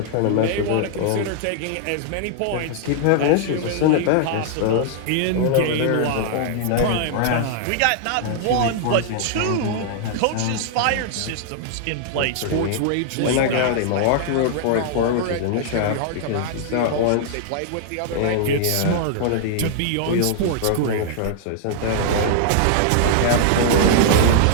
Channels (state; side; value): different; both; correlation -0.01